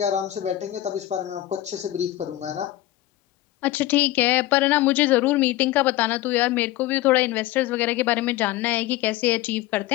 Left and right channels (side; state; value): right; quieter; 15.4 dB